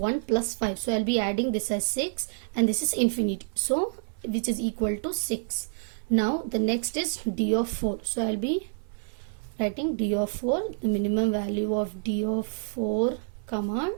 plus 5. So I'll be adding this as 6 and this is infinity. So which is equal to 6. Now the next is d of 4. So I'll be writing d of 4, the minimum value of d of 4 comma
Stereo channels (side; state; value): left; silent; 57 dB below the other